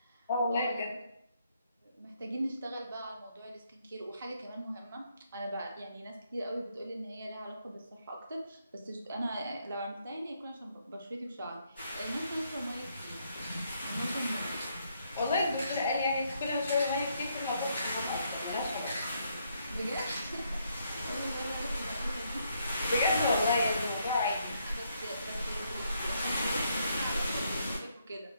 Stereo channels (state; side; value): inverted; both; correlation -0.75